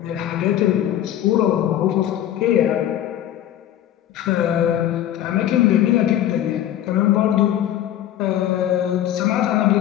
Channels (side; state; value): right; quieter; 11.8 dB